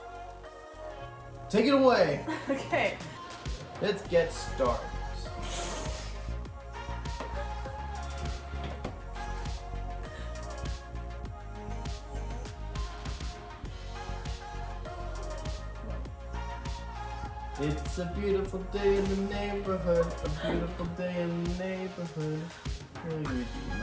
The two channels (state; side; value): identical; both; correlation 1.00